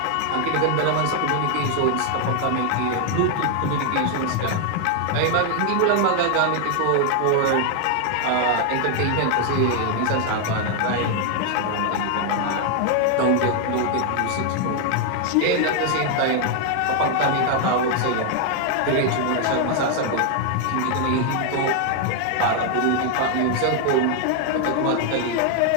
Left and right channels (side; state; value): both; different; correlation 0.00